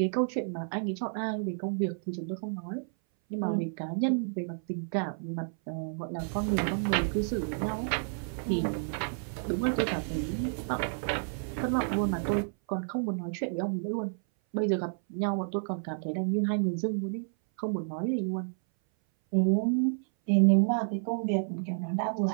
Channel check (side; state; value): left; silent; 57 dB below the other